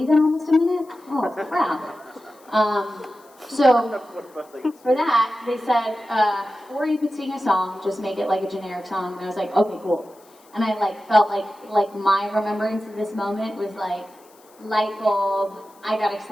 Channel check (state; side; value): noise; left; hiss, 29 dB below the sound